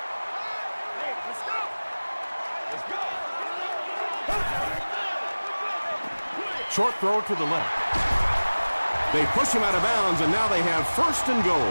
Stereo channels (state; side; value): inverted; both; correlation -1.00